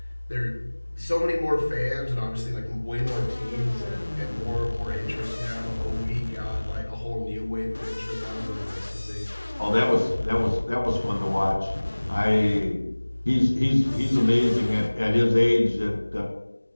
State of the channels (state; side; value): inverted; both; correlation -1.00